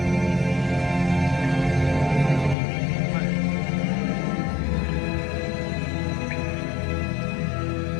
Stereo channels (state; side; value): drops out; right; at 2.6 s